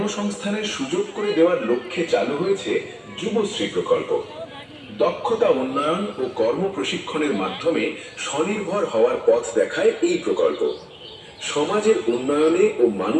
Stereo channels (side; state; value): both; identical; correlation 1.00